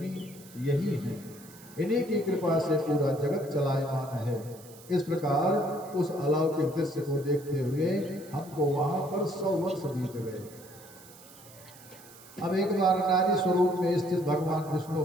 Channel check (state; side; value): noise; right; hiss, 21 dB below the sound